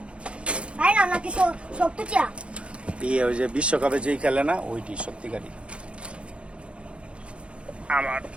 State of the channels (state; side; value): late; left; 0.059 ms